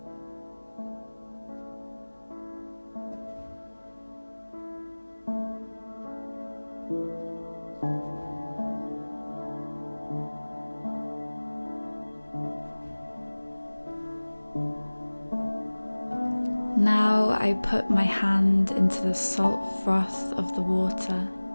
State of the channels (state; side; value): inverted; both; correlation -1.00